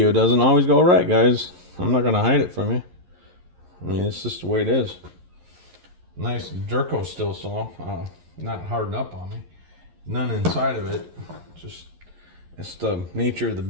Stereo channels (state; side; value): late; left; 11 ms